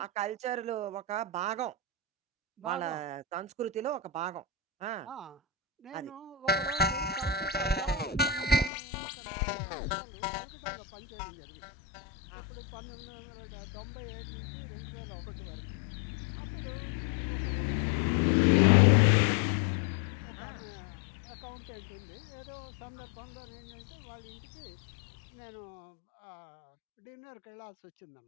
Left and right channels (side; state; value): right; drops out; at 8.7 s